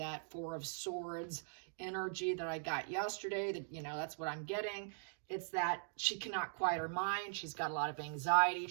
Four of Swords energy that I got yesterday. That, you know, that's what I'm getting. It's that she cannot quiet her mind. She's got a lot of anxiety.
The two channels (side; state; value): left; silent; digital silence